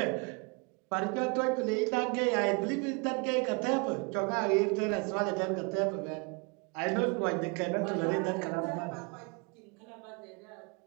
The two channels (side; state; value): left; quieter; 32.6 dB